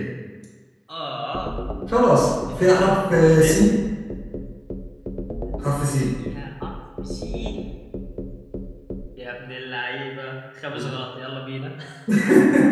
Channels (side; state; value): both; identical; correlation 1.00